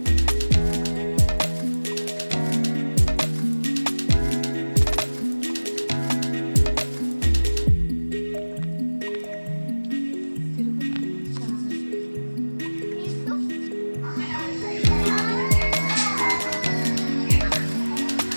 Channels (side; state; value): both; inverted; correlation -1.00